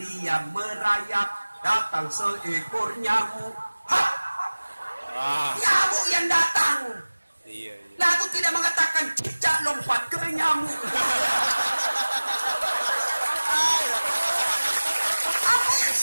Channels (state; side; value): inverted; both; correlation -1.00